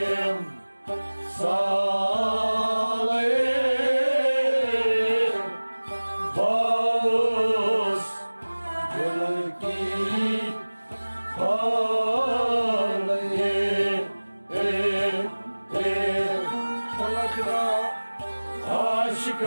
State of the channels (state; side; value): inverted; both; correlation -1.00